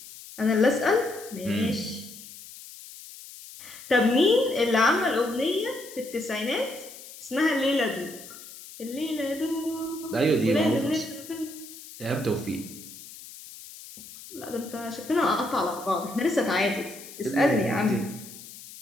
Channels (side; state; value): left; noise; hiss, 16 dB below the sound